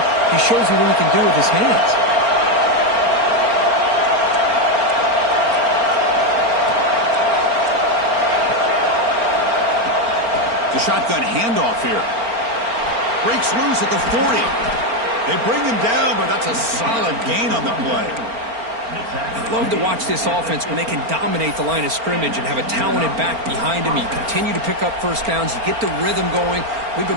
he shows you what he can do with his hands. The shotgun handoff here. Breaks loose at the 40. They bring him down, but that's a solid gain on the play. I love to watch this offense when they can dominate the line of scrimmage and have a talented back behind him. You continue to pick up first downs. You get the rhythm going. We've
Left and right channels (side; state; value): left; late; 4.4 ms